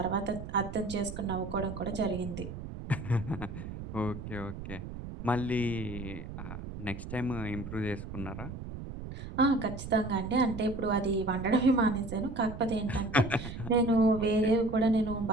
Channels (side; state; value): right; noise; rumble, 9 dB below the sound